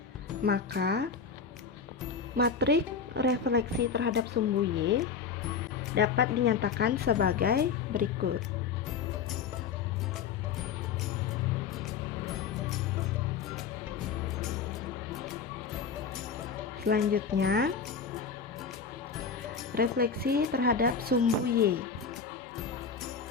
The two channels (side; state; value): right; quieter; 6.0 dB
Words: Maka matriks refleksi terhadap sumbu Y dapat dinyatakan sebagai berikut. Selanjutnya, refleksi terhadap sumbu Y.